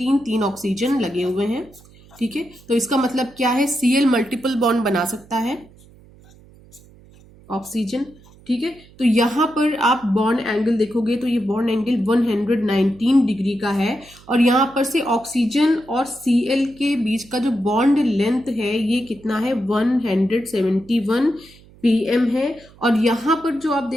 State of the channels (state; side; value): noise; right; hum, 25 dB below the sound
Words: ऑक्सीजन लगे हुए हैं, ठीक है। तो इसका मतलब क्या है, Cl मल्टीपल बॉन्ड बना सकता है ऑक्सीजन, ठीक है। तो यहाँ पर आप बॉन्ड एंगल देखोगे तो ये बॉन्ड एंगल 119 डिग्री का है, और यहाँ पर से ऑक्सीजन और Cl के बीच का जो बॉन्ड लेंथ है ये कितना है, 171 pm है। और यहाँ पर जो आप